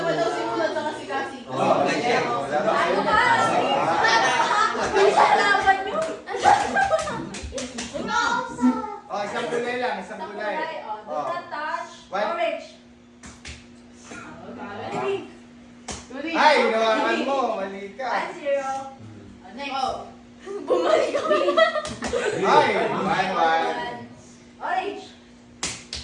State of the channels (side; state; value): both; identical; correlation 1.00